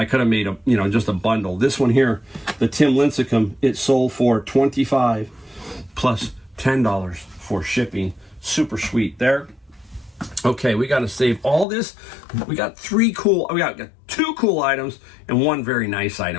could have made just a bundle. This one here, the Tim Lincecum, it sold for $25 plus $10 for shipping. Super sweet there. Okay, we got to save all this. We got 2 cool items and 1 very nice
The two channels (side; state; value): right; drops out; at 11.7 s